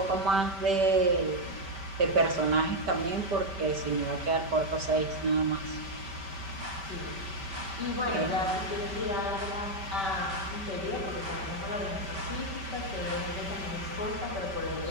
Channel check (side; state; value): left; late; 5.2 ms